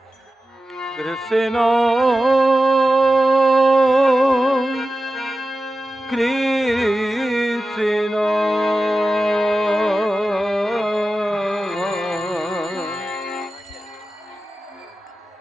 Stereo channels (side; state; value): both; normal; correlation 0.93